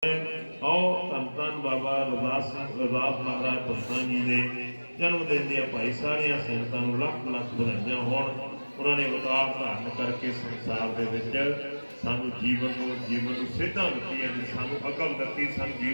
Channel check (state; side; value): inverted; both; correlation -1.00